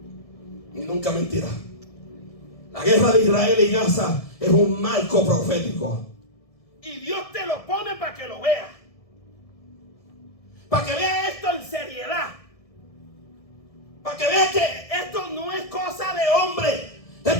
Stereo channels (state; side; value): late; right; 1.6 ms